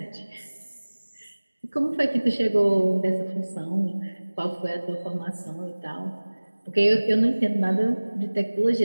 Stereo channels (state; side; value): inverted; both; correlation -1.00